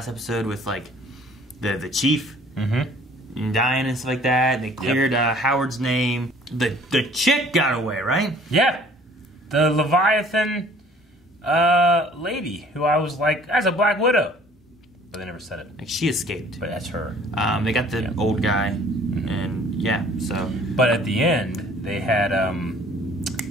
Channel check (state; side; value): normal; both; correlation 0.54